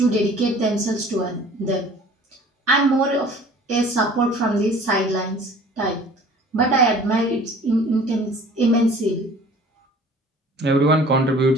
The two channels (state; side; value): normal; both; correlation 0.48